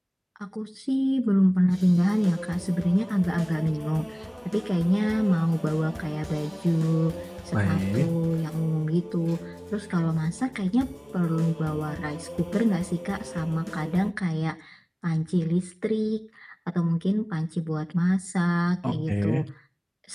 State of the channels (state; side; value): identical; both; correlation 1.00